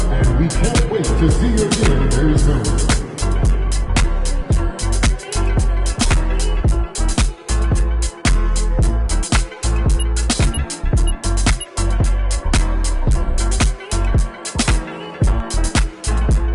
we can't wait to see you again very soon.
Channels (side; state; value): both; identical; correlation 1.00